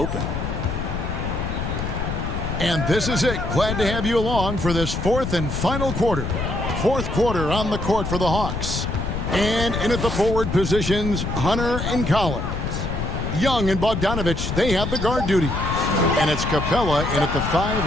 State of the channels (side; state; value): left; noise; rumble, 3 dB below the sound